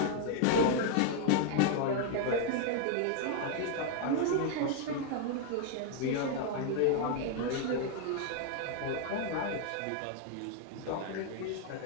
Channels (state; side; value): different; both; correlation 0.00